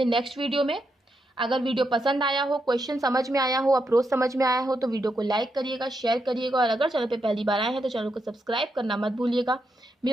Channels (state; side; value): normal; both; correlation 0.83